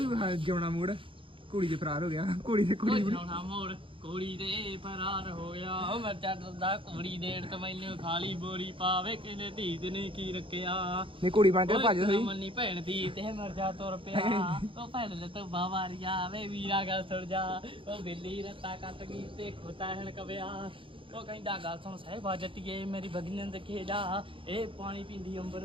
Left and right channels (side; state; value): left; late; 0.25 ms